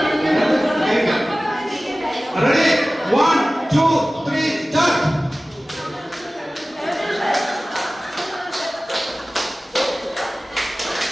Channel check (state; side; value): normal; both; correlation 0.97